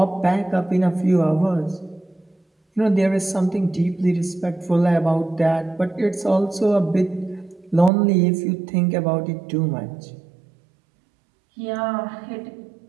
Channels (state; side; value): drops out; left; at 7.9 s